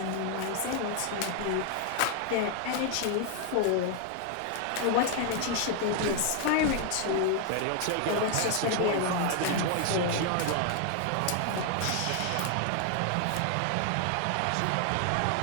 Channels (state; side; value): different; both; correlation 0.00